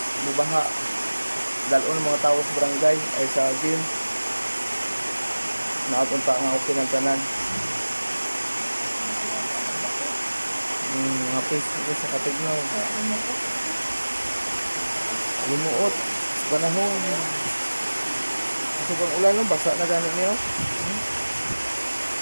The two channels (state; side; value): inverted; both; correlation -1.00